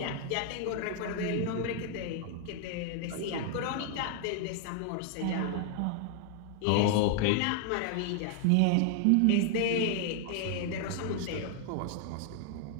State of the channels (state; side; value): different; both; correlation 0.00